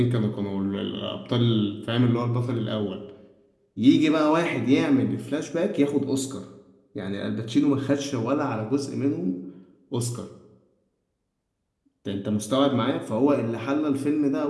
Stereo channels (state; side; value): identical; both; correlation 1.00